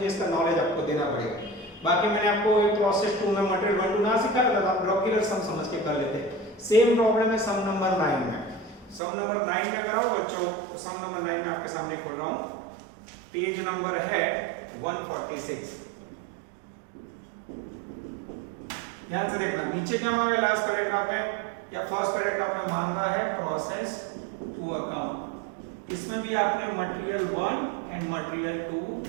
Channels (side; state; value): left; drops out; at 9.0 s